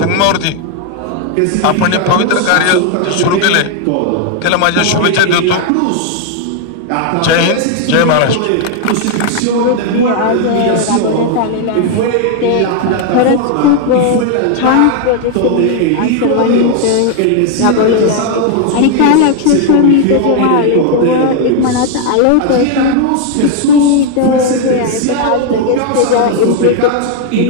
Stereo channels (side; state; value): both; different; correlation 0.01